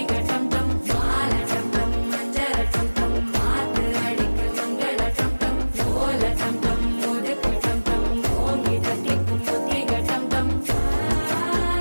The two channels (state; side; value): inverted; both; correlation -1.00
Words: டம் டம் மாலை டம் டம் மஞ்சள் டம் டம் மாத்து அடிக்க மங்கள